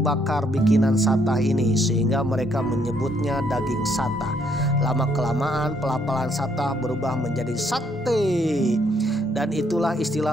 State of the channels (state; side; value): normal; both; correlation 0.70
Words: bakar bikinan Satah ini, sehingga mereka menyebutnya daging Satah. Lama-kelamaan pelapalan Satah berubah menjadi sate, dan itulah